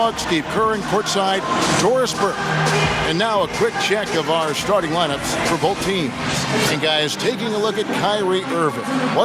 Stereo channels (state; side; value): identical; both; correlation 1.00